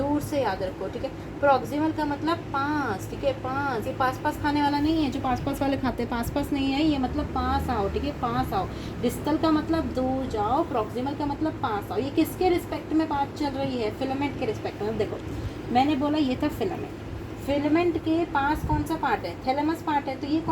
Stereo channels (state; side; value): identical; both; correlation 1.00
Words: से याद रखो, ठीक है। प्रॉक्सिमल का मतलब पास, ठीक है, पास। ये पास पास खाने वाला नहीं है, जो पास पास वाले खाते हैं, पास पास नहीं है ये, मतलब पास आओ, ठीक है, पास आओ। डिस्टल का मतलब दूर जाओ, प्रॉक्सिमल का मतलब पास आओ। ये किसके रिस्पेक्ट में बात चल रही है, फिलामेंट के रिस्पेक्ट में। देखो मैंने बोला ये था फिलामेंट, फिलामेंट के पास कौन सा पार्ट है, थैलेमस पार्ट है, तो ये